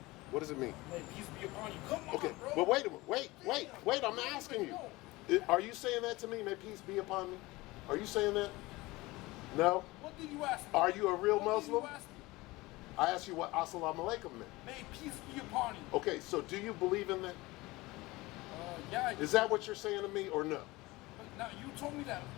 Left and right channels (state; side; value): quieter; right; 20.9 dB